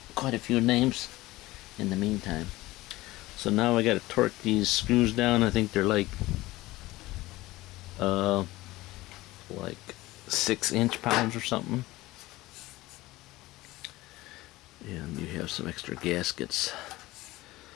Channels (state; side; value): quieter; right; 18.6 dB